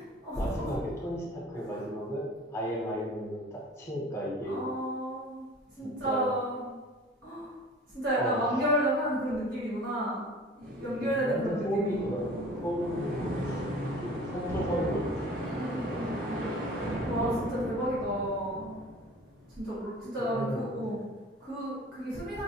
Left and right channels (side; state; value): both; normal; correlation 0.45